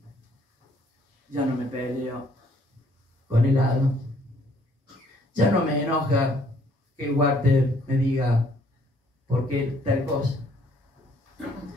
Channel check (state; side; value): normal; both; correlation 0.64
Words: Ya no me peleo con el hado. Ya no me enoja que Walter me diga por qué tal cosa.